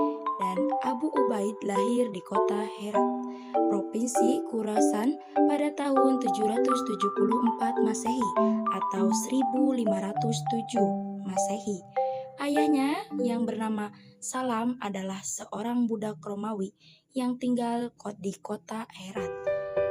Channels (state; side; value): identical; both; correlation 1.00